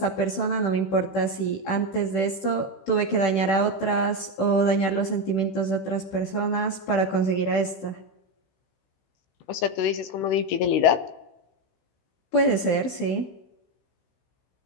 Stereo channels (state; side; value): late; right; 16 ms